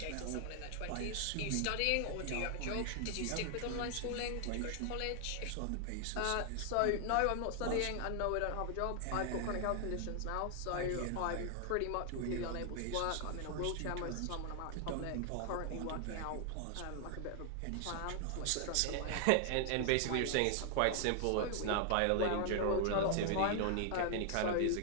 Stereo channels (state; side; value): different; both; correlation 0.00